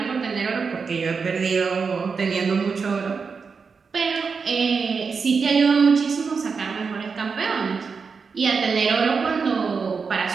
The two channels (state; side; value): quieter; left; 5.3 dB